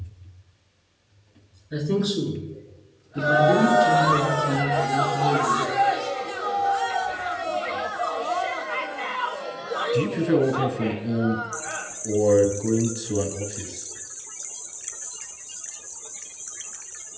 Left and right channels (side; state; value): both; identical; correlation 1.00